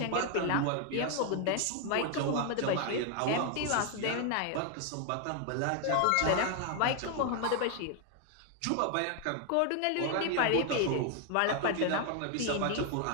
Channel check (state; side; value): different; both; correlation 0.00